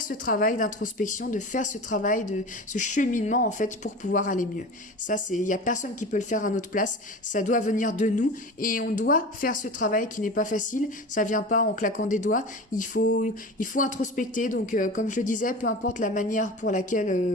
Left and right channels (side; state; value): both; normal; correlation 0.32